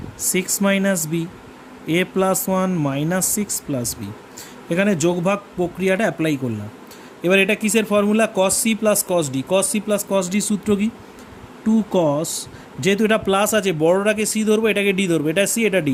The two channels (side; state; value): both; identical; correlation 1.00